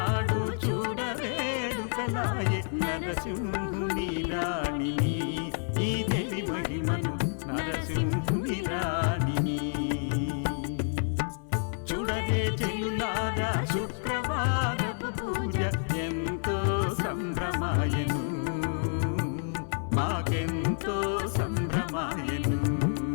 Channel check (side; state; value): right; silent; 58 dB below the other